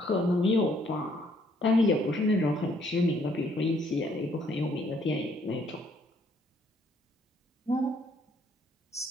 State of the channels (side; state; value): both; normal; correlation 0.66